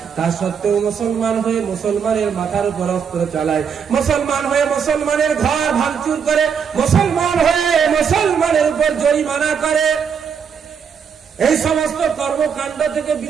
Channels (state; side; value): quieter; left; 6.9 dB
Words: তা সত্ত্বেও মুসলমান হয়ে মুসলমানের মাথার উপর অস্ত্র চালায়, মুসলমান হয়ে মুসলমানের ঘর ভাঙচুর করে, মুসলমান হয়ে মুসলমানের উপর জরিমানা করে, এই সমস্ত কর্মকাণ্ড থেকে